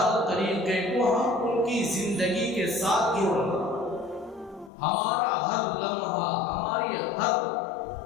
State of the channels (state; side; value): drops out; right; at 4.7 s